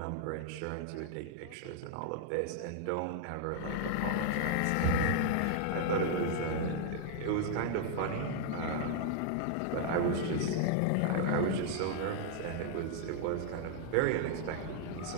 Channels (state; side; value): different; both; correlation 0.00